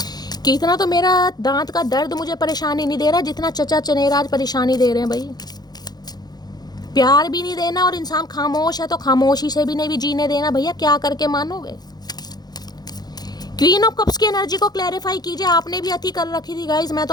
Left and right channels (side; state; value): right; late; 0.19 ms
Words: कि इतना तो मेरा दांत का दर्द मुझे परेशानी नहीं दे रहा जितना चचा चनेराज परेशानी दे रहे हैं भाई। प्यार भी नहीं देना, और इंसान खामोश है तो खामोशी से भी नहीं भी जीने देना, भैया क्या करके मानोगे। क्वीन ऑफ कप्स की एनर्जी को क्लैरिफाई कीजिए, आपने भी अति कर रखी थी गाइज, मैं